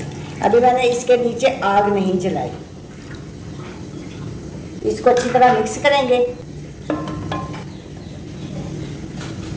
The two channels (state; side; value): identical; both; correlation 1.00